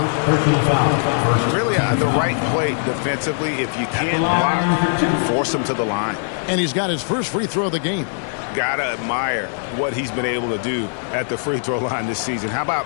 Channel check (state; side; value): silent; right; digital silence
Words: Personal foul. Really, the right play defensively. If you can't block, force him to the line. And he's got his first free throw of the game. Gotta admire what he's been able to do at the free throw line this season. How